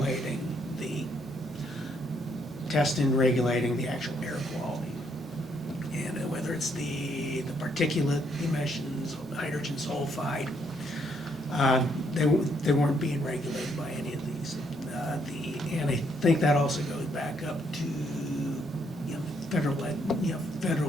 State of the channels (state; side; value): normal; both; correlation 0.72